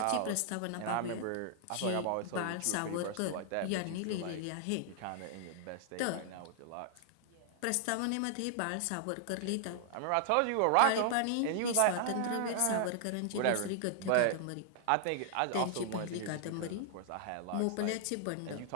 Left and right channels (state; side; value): different; both; correlation -0.01